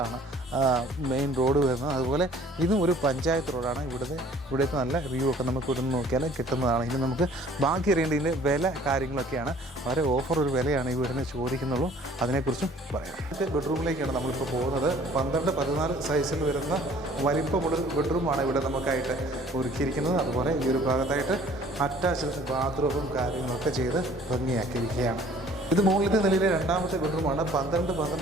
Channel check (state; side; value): normal; both; correlation 0.54